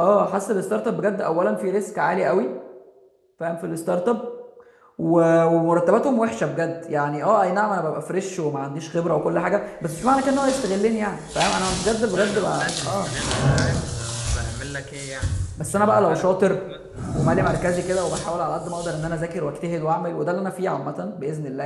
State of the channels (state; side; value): identical; both; correlation 1.00